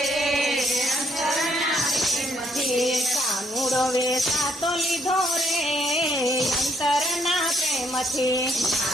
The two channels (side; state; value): both; normal; correlation 0.71